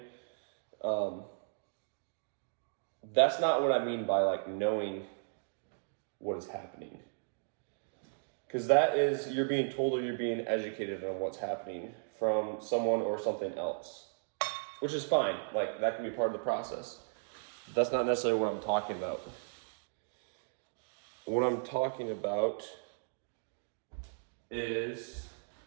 That's not what I mean by like knowing what is happening. Because that is, you're being told or you're being educated on what's happening from someone or something else, which is fine. Like that can be part of the process. That's not necessarily what I'm talking about. What I'm talking about is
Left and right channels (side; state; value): left; silent; digital silence